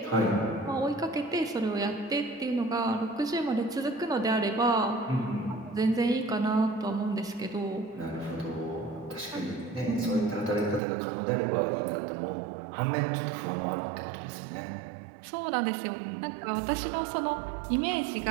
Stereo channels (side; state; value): left; drops out; at 10.8 s